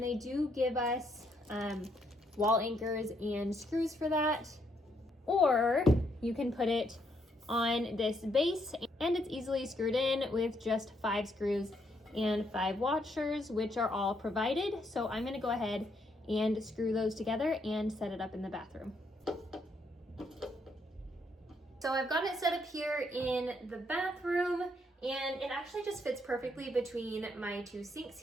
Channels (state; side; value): normal; both; correlation 0.74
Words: they do give us wall anchors and screws for that. Or you can put it on this base, and it's easily screwed in with just 5 screws and 5 washers, which are all provided. So I'm gonna go ahead and screw those together and set it up in the bathroom. So I've got it set up here in the bathroom, and it actually just fits perfectly between my 2 sinks